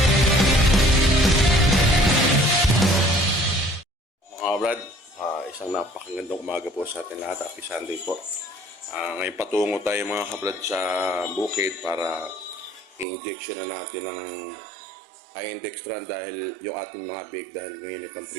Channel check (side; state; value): left; drops out; at 13.1 s